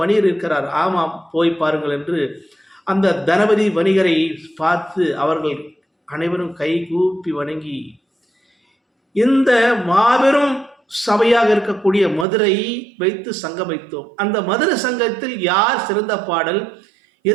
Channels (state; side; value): drops out; left; at 12.2 s